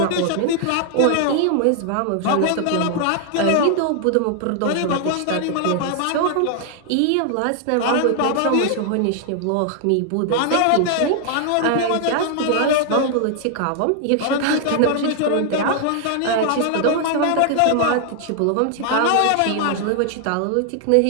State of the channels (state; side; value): different; both; correlation 0.00